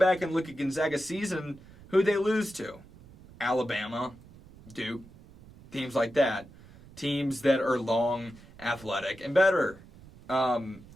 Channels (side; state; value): right; noise; rumble, 21 dB below the sound